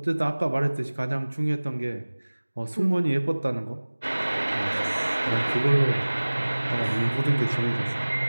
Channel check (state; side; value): inverted; both; correlation -1.00